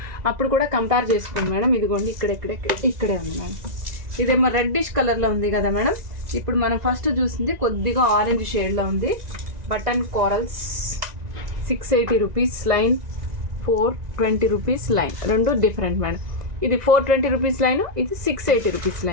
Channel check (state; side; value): late; left; 1.9 ms